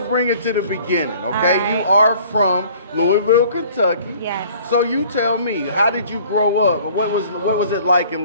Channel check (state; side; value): inverted; both; correlation -0.53